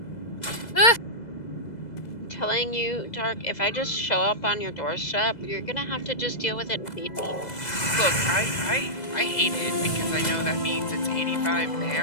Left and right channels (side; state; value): right; late; 2.0 ms